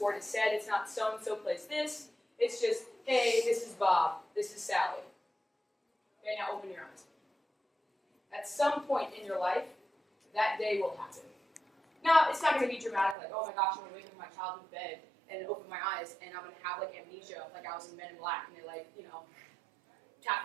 is said, it's not so-and-so plays this, it's just, hey, this is Bob, this is Sally. Okay, now open your eyes. At some point in your life, that day will happen. Now, it's not going to be dramatic, like, oh my gosh, I'm going to wake up in my childhood bed and open my eyes, and I'm going to have, like, amnesia, like I was in Men in Black, and they, like, tap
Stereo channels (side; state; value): left; drops out; at 13.2 s